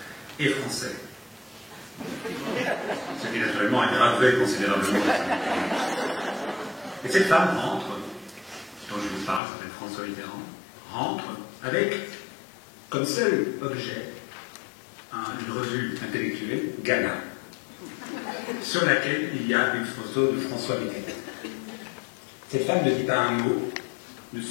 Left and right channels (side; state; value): right; drops out; at 9.4 s